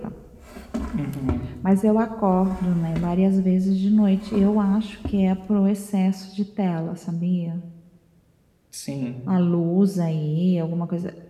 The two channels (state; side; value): identical; both; correlation 1.00